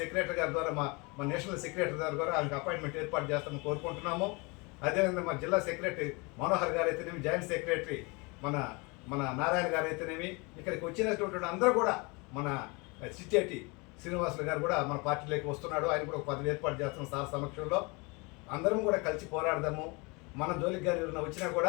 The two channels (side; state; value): right; quieter; 28.2 dB